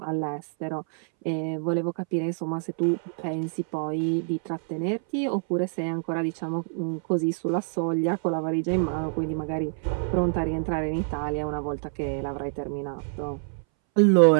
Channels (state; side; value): silent; left; 60 dB below the other